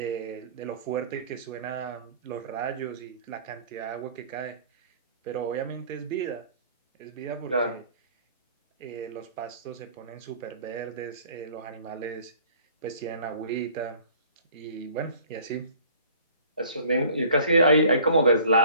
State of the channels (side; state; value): both; inverted; correlation -0.51